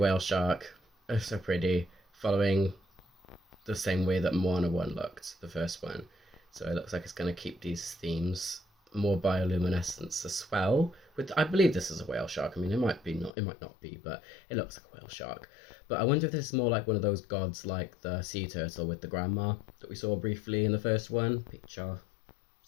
shark. Oh, so pretty. Following the same way that Moana 1 looked, the first one. So it looks like it's going to keep these themes. More bioluminescence as well. I believe this is a whale shark. I mean, it might not be, but it looks like a whale shark. But I wonder if this is more like one of those gods, like the sea turtle with the grandma that we saw briefly in the first one. Picture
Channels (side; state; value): right; drops out; at 13.3 s